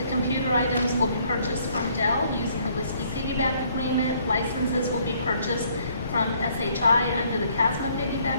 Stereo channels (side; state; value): both; inverted; correlation -0.65